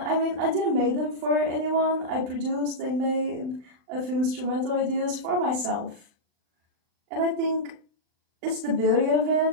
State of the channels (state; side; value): late; left; 39 ms